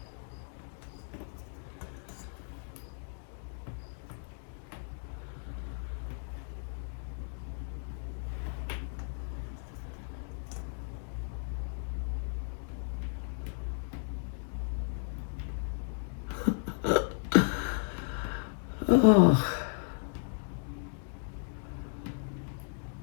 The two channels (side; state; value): right; silent; 55 dB below the other